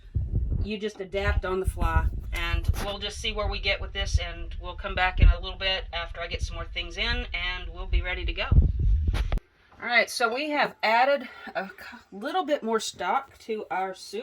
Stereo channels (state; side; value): identical; both; correlation 1.00